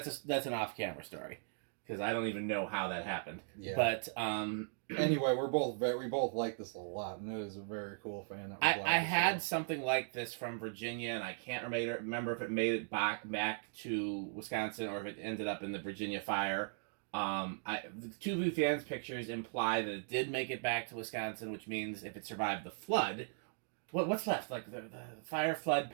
an off-camera story, because I don't even know how that happened. Yeah. But anyway, we both like this a lot, and it is a very cool fan. I had something like this from Virginia, and I can't remember if it made it back to Wisconsin or if it ended up in the Virginia fire. The two Vu fans pictures imply that it did make it back to Wisconsin, which means if it survived the flood, what's left? Like the fire, flood,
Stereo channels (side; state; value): left; silent; digital silence